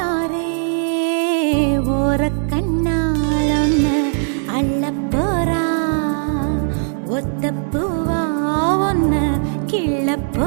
ஓர கண்ணால் ஒன்னு அள்ள போறா ஒத்த பூவா ஒன்னு கிள்ள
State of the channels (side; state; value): left; silent; 64 dB below the other